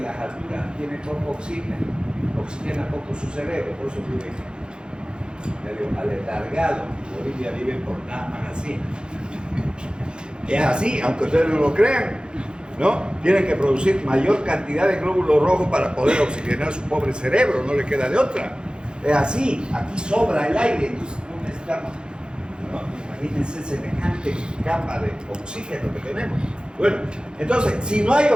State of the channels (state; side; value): late; left; 0.049 ms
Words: las alturas tiene poco oxígeno, oxigena poco su cerebro, por eso vive medio aletargado. En Bolivia viven por nada más así. Es así, aunque ustedes no lo crean, ¿no? Tienen que producir mayor cantidad de glóbulos rojos para poder oxigenar su pobre cerebro, no le queda de otra. Es así, aquí sobra el aire, entonces no necesitamos, ¿no? Imagínense semejante capa de oxígeno que tenemos. Bueno, entonces, si no hay